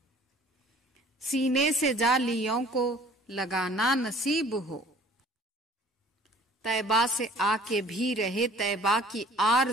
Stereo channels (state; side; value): normal; both; correlation 0.52